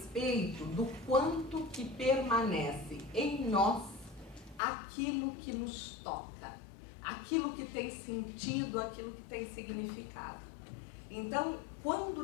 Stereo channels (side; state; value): right; drops out; at 4.6 s